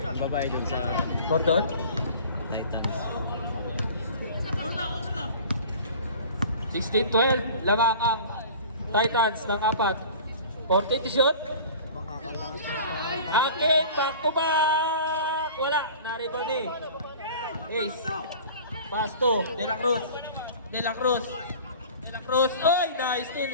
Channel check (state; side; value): inverted; both; correlation -0.42